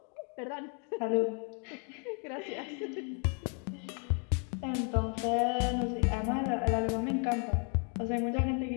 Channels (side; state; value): right; quieter; 39.3 dB